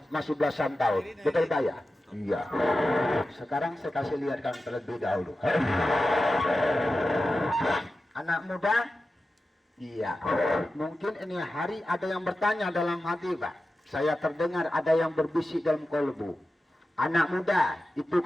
masih belasan tahun, betul Pak ya? Iya. Sekarang saya kasih lihatkan terlebih dahulu. Anak muda? Iya. Mungkin ini hari ada yang bertanya dalam hati Pak. Saya terdengar ada yang berbisik dalam kolbu. Anak muda, itu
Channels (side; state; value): both; normal; correlation 0.93